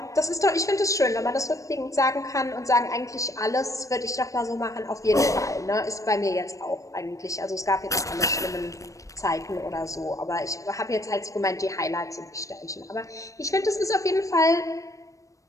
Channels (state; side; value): late; right; 0.16 ms